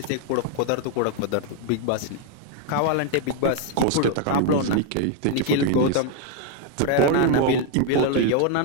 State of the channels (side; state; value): both; different; correlation 0.00